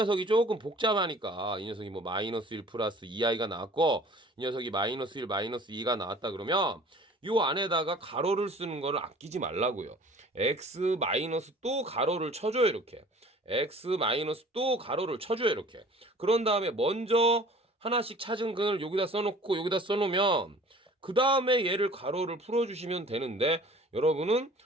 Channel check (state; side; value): normal; both; correlation 0.48